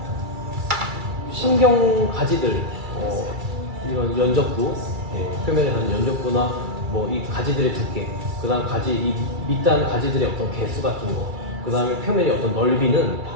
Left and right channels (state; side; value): late; left; 2.3 ms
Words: 신경 가지들, 이런 연적부, 표면에 가는 연적부나 뭐 이 가지들의 두께, 그다음 가지 이 밑단 가지들의 어떤 개수 같은 거, 그다음에 표면의 어떤 넓이는